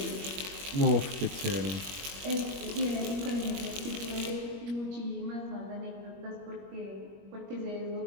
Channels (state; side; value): late; left; 21 ms